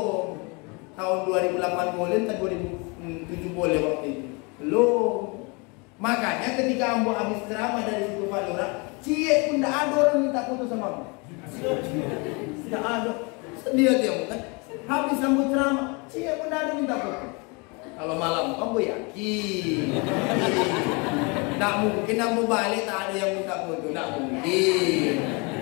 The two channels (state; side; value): quieter; right; 30.3 dB